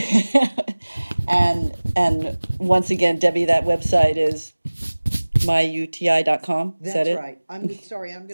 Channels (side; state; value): both; inverted; correlation -1.00